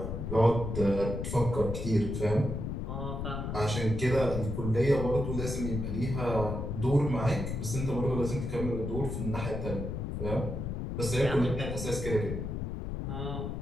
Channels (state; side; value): noise; left; rumble, 4 dB below the sound